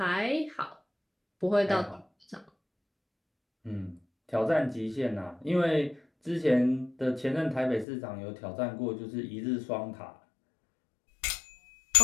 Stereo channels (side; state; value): right; drops out; at 7.9 s